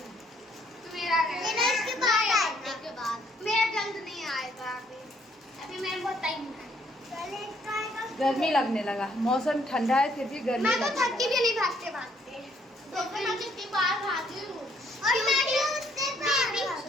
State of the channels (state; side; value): normal; both; correlation 0.67